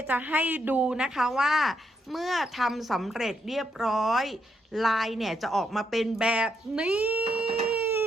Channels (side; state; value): both; normal; correlation 0.78